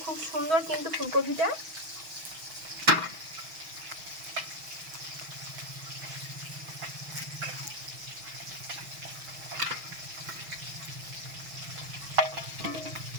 খুব সুন্দর কিন্তু ফুলকপিটা।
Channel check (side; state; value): left; late; 6.2 ms